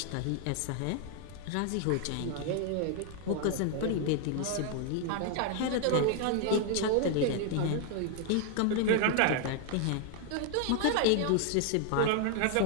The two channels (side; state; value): both; different; correlation 0.00